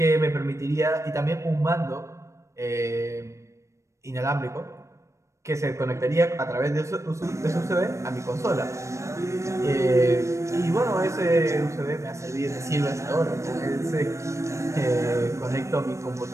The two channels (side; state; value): left; late; 0.15 ms